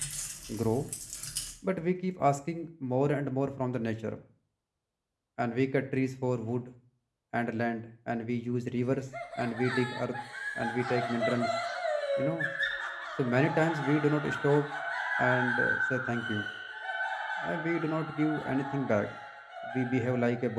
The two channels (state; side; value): identical; both; correlation 1.00